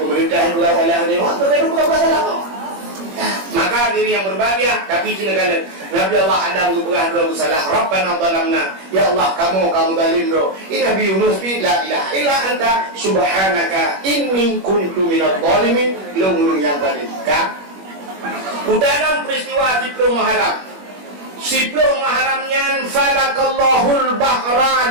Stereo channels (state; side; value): late; left; 21 ms